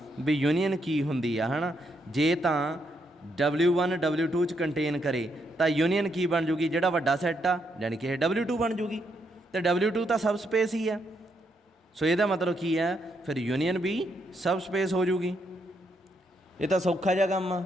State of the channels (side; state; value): both; normal; correlation 0.77